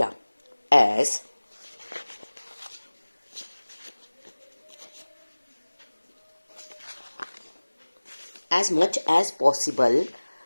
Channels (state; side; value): inverted; both; correlation -1.00